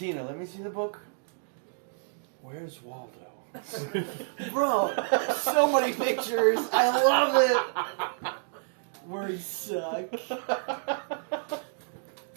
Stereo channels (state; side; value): silent; left; digital silence